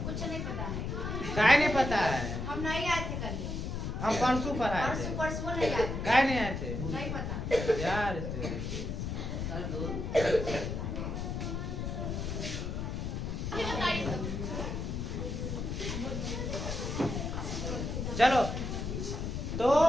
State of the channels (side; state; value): left; noise; rumble, 3 dB below the sound